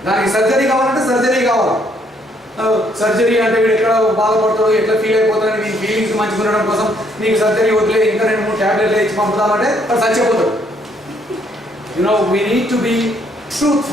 దానికి సర్జరీ కావాలంటే సర్జరీ కావాలి. సర్జరీ అంటే వీడు ఎక్కడ బాధపడతాడో, ఎట్లా ఫీల్ అయిపోతాడో, నీ ఫీలింగ్స్ మంచిగా ఉండడం కోసం నీకు సర్జరీ వదిలే, ఇంకా 2-3 ట్యాబ్లెట్లు ఇచ్చి పంపుతామంటే అది చచ్చిపోతాడు. We need to be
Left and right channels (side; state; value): both; normal; correlation 0.68